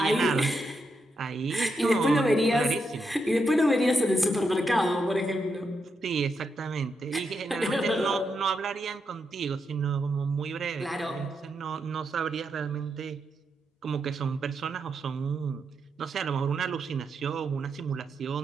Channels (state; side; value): normal; both; correlation 0.83